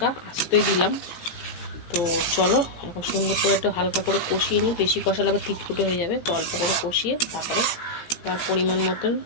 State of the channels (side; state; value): right; late; 17 ms